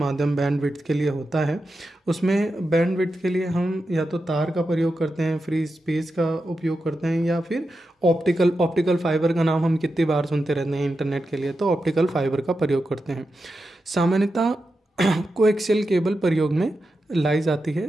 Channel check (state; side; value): normal; both; correlation 0.89